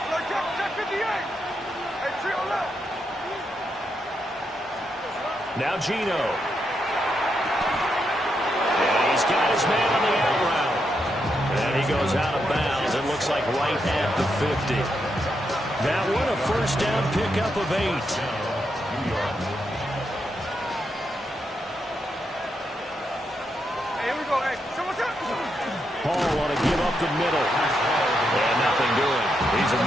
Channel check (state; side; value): normal; both; correlation 0.82